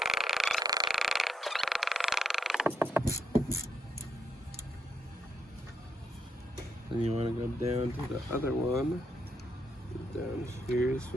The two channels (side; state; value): both; normal; correlation 0.78